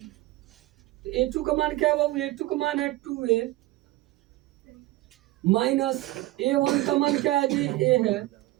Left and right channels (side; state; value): left; quieter; 18.0 dB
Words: A2 का मान क्या है बाबू, A2 का मान है 2A माइनस A1 का मान क्या है जी A है,